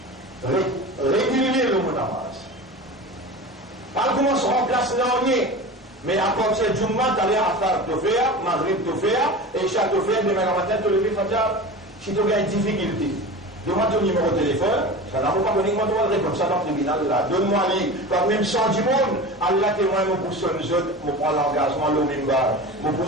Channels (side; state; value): both; normal; correlation 0.32